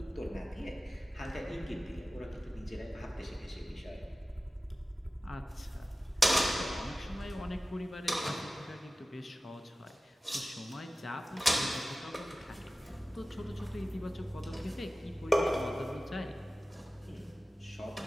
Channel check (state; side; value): normal; both; correlation 0.96